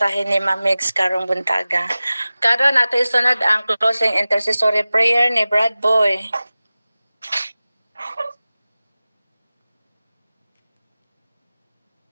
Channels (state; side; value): inverted; both; correlation -0.97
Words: ni Ma'am Mix karong buntaga. Karon nato isunod ang closing intercessory prayer ni Brad Boy.